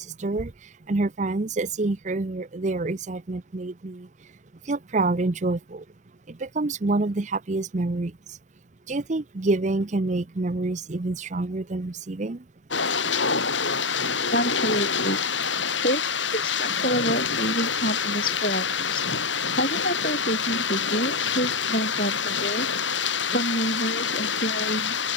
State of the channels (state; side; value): normal; both; correlation 0.18